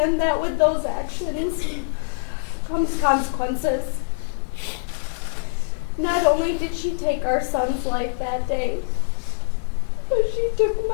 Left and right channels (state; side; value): silent; right; digital silence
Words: that with those actions comes consequences. Not only did she take our son's life that day, but she took